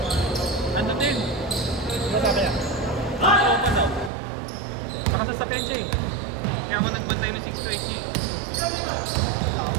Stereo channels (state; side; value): drops out; left; at 4.1 s